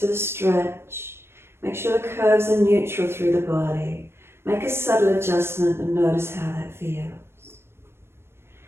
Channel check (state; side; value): late; left; 0.12 ms